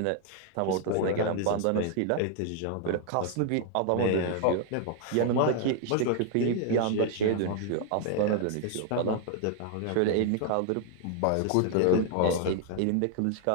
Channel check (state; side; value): different; both; correlation 0.00